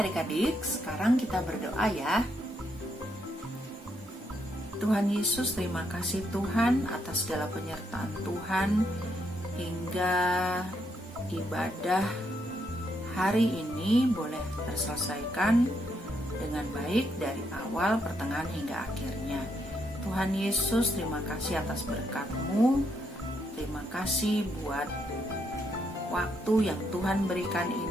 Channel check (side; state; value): both; normal; correlation 0.77